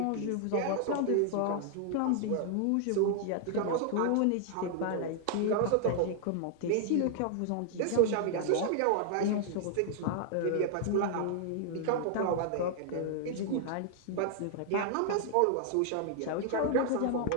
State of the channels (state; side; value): different; both; correlation 0.00